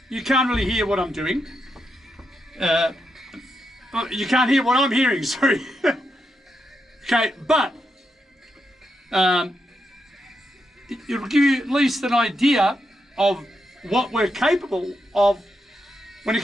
You can't really hear what I'm doing. You can't hear what I'm hearing, sorry. Okay, but it'll give you at least an idea of what we're capable of when it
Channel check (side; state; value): both; normal; correlation 0.83